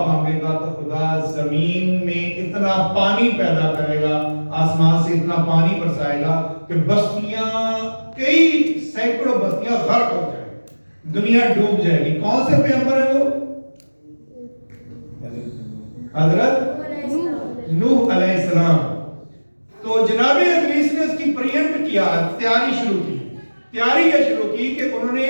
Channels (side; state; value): both; inverted; correlation -1.00